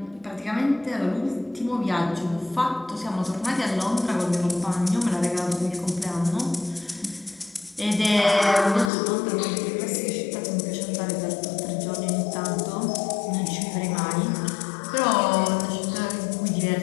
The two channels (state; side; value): drops out; right; at 8.9 s